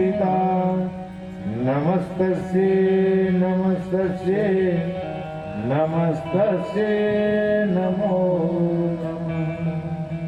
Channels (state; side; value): identical; both; correlation 1.00